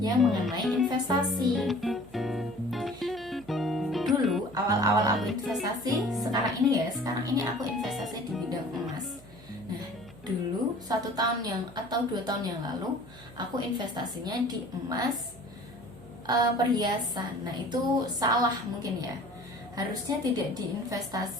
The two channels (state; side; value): noise; right; hum, 21 dB below the sound